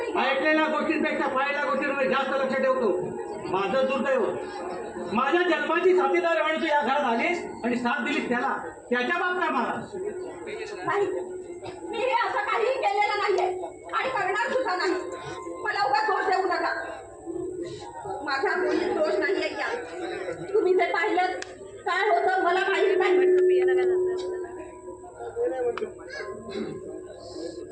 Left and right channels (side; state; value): both; identical; correlation 1.00